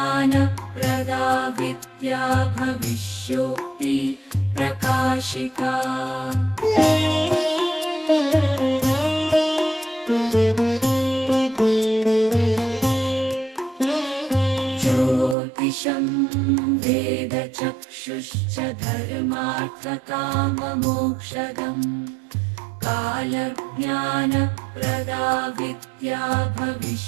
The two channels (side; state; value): left; drops out; at 15.4 s